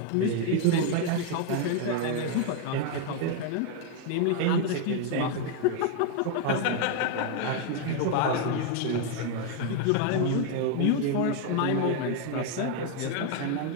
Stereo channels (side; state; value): both; different; correlation 0.00